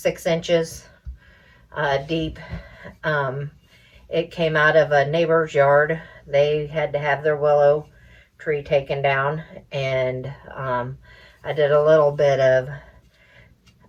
inches deep. It came out of a neighbor's yard. They had to have their willow tree taken down, and I did a little bit of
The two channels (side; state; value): both; identical; correlation 1.00